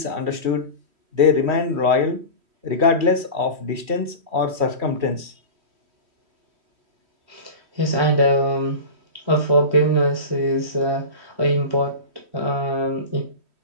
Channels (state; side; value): late; left; 3.1 ms